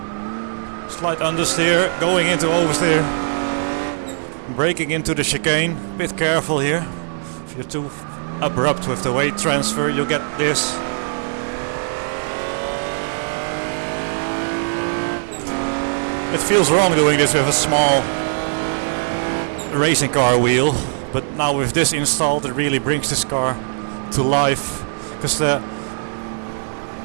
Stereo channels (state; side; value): silent; left; digital silence